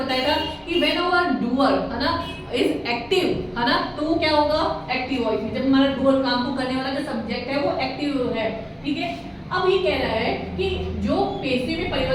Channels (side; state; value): both; identical; correlation 1.00